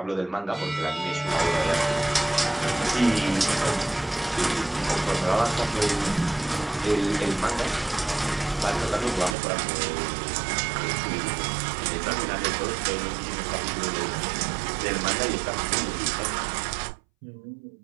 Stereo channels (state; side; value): drops out; left; at 9.3 s